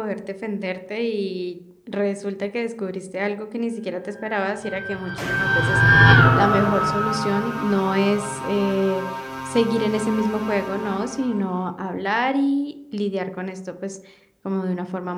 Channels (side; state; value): both; identical; correlation 1.00